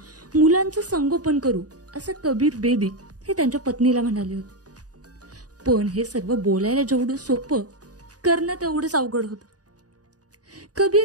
मुलांचं संगोपन करू असं कबीर बेदी हे त्यांच्या पत्नीला म्हणाले होते. पण हे सर्व बोलायला जेवढं सोपं करणं तेवढंच अवघड होतं.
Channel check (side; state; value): left; late; 0.68 ms